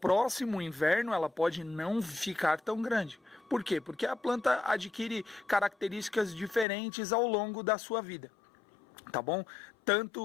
inverno ela pode não ficar tão grande. Por quê? Porque a planta adquire características diferentes ao longo da sua vida. Tá bom?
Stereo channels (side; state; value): right; drops out; at 6.7 s